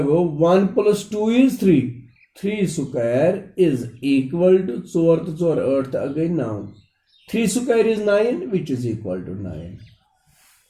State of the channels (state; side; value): identical; both; correlation 1.00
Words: go 1 + 2 is 3, 3 square is equal to 4 तो 4 8 गई 9, 3 square is 9 which is equal to 9।